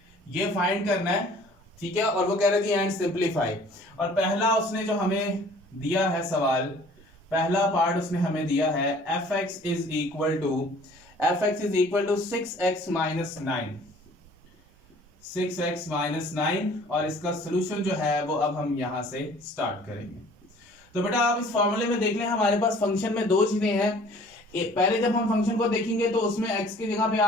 ये फाइंड करना है, ठीक है, और वो कह रहे थे एंड सिंप्लीफाई। और पहला उसने जो हमें दिया है सवाल, पहला पार्ट उसने हमें दिया है fx is equal to 6x minus 9, 6x minus 9, और इसका सोल्यूशन जो है वो अब हम यहां से स्टार्ट करेंगे। तो बेटा आप इस फॉर्मूले में देख लें, हमारे पास फंक्शन में दो चीजें हैं। पहले जब हम फंक्शन को देखेंगे तो उसमें x की जगह पे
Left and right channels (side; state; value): both; normal; correlation 0.52